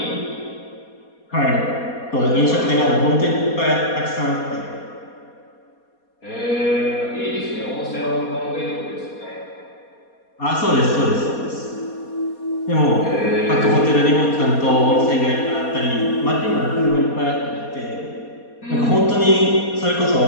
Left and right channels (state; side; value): late; right; 4.2 ms